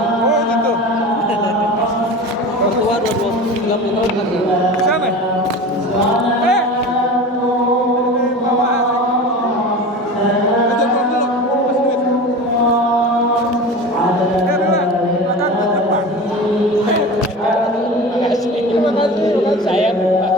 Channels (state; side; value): normal; both; correlation 0.32